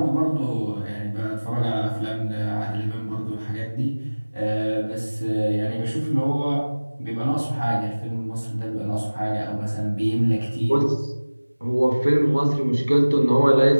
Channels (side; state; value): both; inverted; correlation -1.00